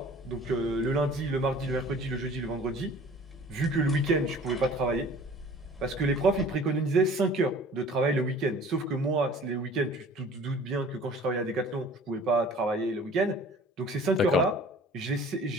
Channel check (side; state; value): both; normal; correlation 0.47